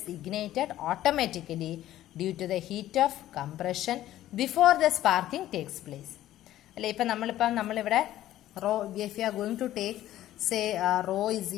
ignited automatically due to the heat of compression before the sparking takes place. അല്ലെ. ഇപ്പം നമ്മളിവിടെ raw, if you are going to take say rho is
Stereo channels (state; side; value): quieter; right; 13.6 dB